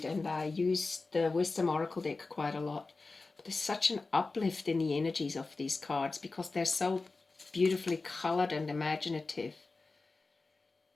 and I use the Wisdom Oracle deck quite a lot. But there's such an uplift in the energies of these cards because they're so beautifully colored and imaginative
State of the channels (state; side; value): quieter; right; 3.7 dB